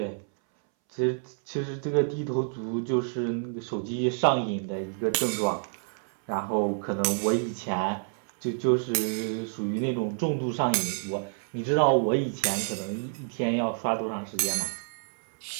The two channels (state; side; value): silent; left; 59 dB below the other